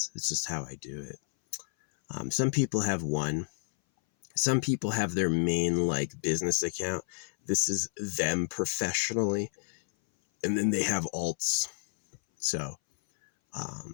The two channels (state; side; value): silent; right; 58 dB below the other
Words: It's just how I do it. Some people have one. Some people have their main business account. This is them professionally. And then they have alts. So,